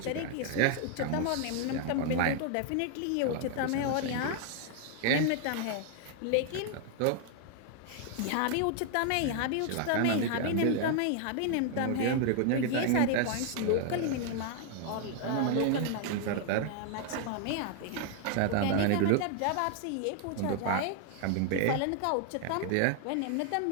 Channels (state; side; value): different; both; correlation 0.00